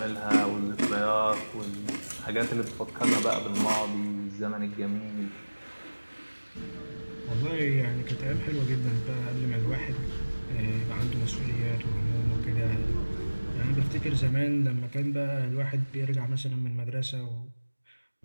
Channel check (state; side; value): inverted; both; correlation -1.00